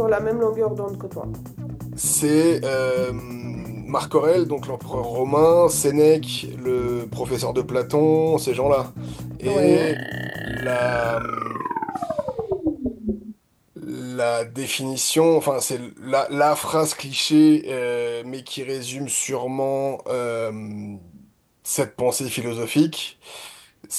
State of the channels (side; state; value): both; identical; correlation 1.00